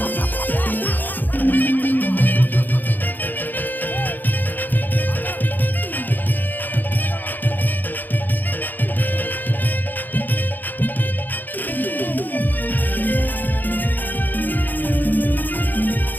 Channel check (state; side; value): late; right; 0.087 ms